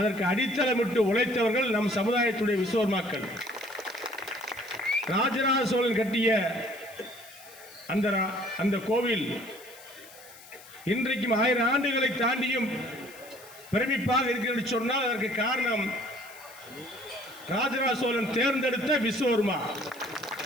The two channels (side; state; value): left; noise; hiss, 20 dB below the sound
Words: அடித்தளமிட்டு உழைத்தவர்கள் நம் சமுதாயத்துடைய விஸ்வகர்மாக்கள். ராஜராஜ சோழன் கட்டிய அந்த கோவில் இன்றைக்கும் 1000 ஆண்டுகளை தாண்டியும் பிரமிப்பாக இருக்கிறது சொன்னால் அதற்கு காரணம் ராஜராஜ சோழன் தேர்ந்தெடுத்த விஸ்வகர்மா,